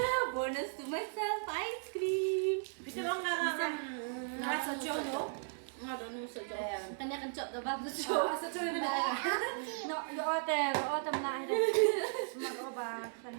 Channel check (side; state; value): left; silent; digital silence